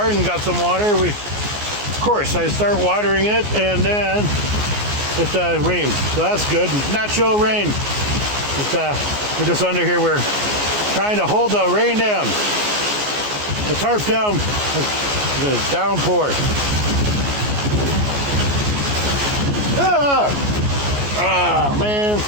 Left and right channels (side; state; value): left; late; 14 ms